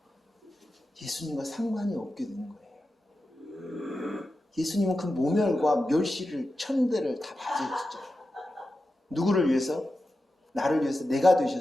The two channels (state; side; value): normal; both; correlation 0.91